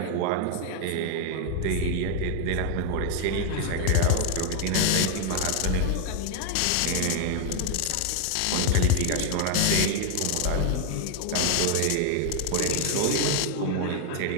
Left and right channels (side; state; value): both; different; correlation 0.00